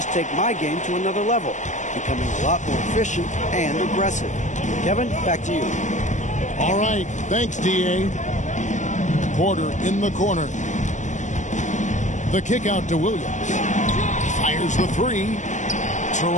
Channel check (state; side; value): late; right; 0.35 ms